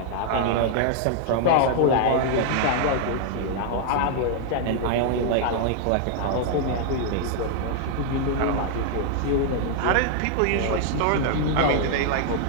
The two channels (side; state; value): both; different; correlation 0.00